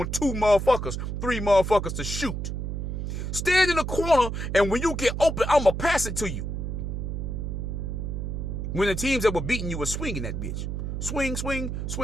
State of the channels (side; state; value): right; noise; hum, 3 dB below the sound